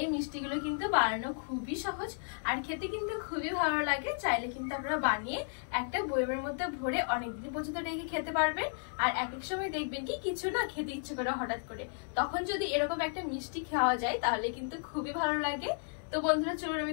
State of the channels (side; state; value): right; silent; digital silence